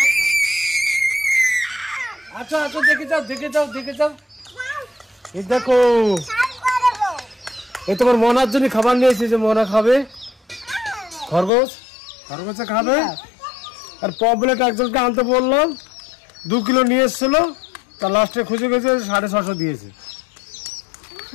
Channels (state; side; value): drops out; right; at 11.5 s